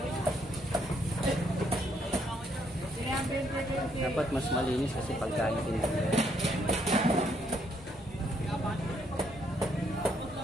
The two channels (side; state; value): both; normal; correlation 0.72